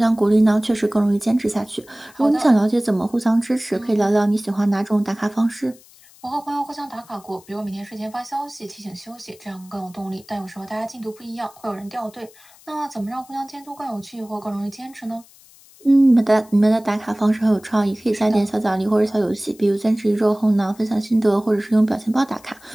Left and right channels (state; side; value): noise; left; hiss, 25 dB below the sound